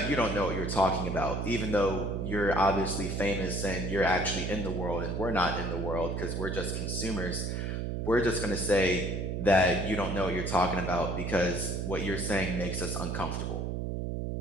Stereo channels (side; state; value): right; noise; hum, 2 dB below the sound